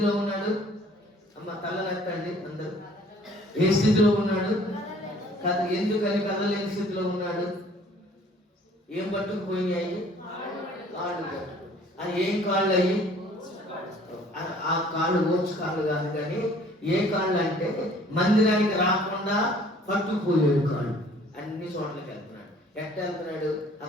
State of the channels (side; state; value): both; normal; correlation 0.55